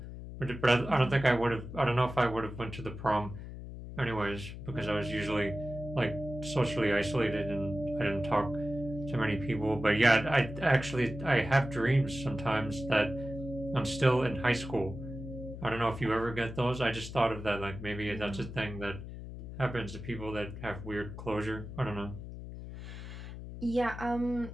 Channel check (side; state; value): left; noise; hum, 10 dB below the sound